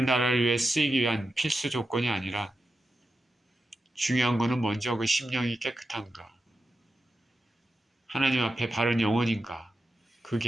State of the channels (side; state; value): both; normal; correlation 0.89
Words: 나라를 위해 쓰이기 위한 필수 조건이 아니라 중요한 것은 먼저 그 심령이 깨끗한가, 하나님 앞에 바른 영혼인가,